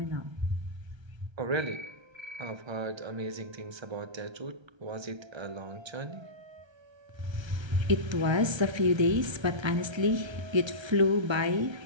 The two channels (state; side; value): late; left; 1.3 ms